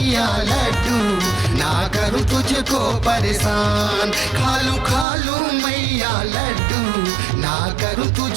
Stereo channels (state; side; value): drops out; left; at 5.1 s